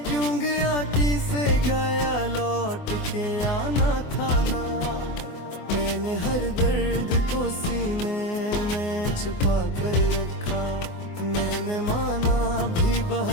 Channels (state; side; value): late; right; 24 ms